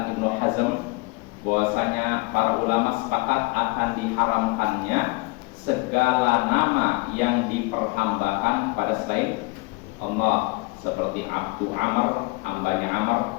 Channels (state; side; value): quieter; right; 25.5 dB